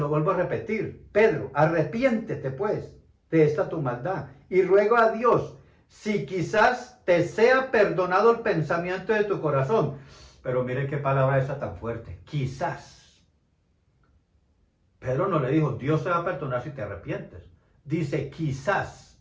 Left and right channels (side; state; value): both; identical; correlation 1.00